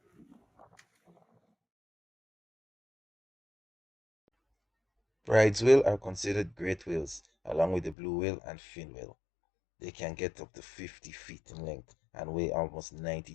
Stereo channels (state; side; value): drops out; right; at 8.0 s